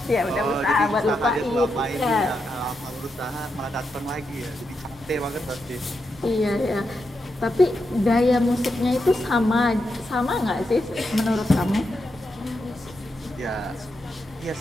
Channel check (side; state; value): both; normal; correlation 0.85